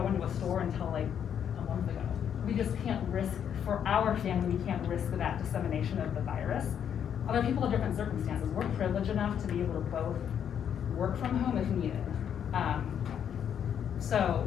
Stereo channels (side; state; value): right; quieter; 8.7 dB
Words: into a store until like a month ago. We just can't risk, for our family, we can't risk that dissemination of the virus. Other people have different circumstances. We're privileged enough to be able to both work from home if needed.